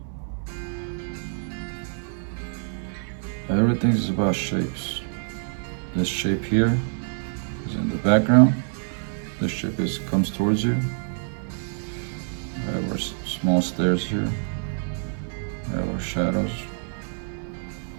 Everything is about shapes. This shape here is in the background. This shape comes towards you. We have our small stairs here. We have our shadows.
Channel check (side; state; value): left; silent; 61 dB below the other